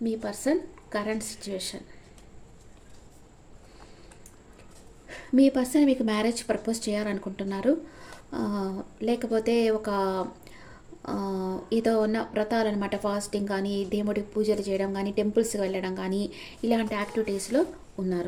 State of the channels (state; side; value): identical; both; correlation 1.00